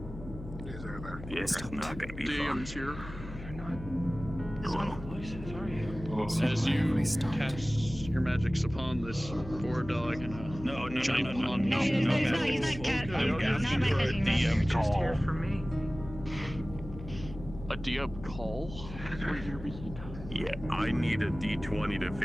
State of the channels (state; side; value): noise; left; hum, 12 dB below the sound